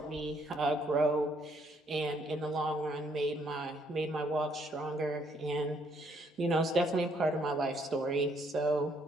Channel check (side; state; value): both; normal; correlation 0.69